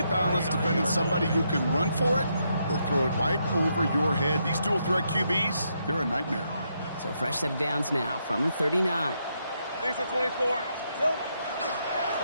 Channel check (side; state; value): both; inverted; correlation -0.79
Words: balance defending somebody who can run for it or throw it right over your head? These dual threat QBs, they're a nightmare. So fresh set of downs now from the 39. Lisa 24.